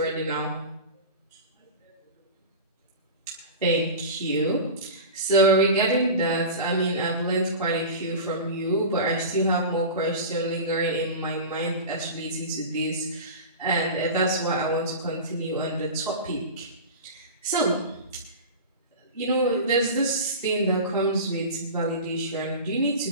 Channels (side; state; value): both; inverted; correlation -0.30